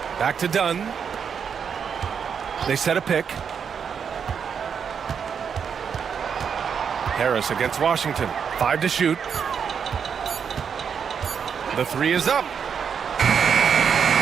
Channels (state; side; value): quieter; left; 7.0 dB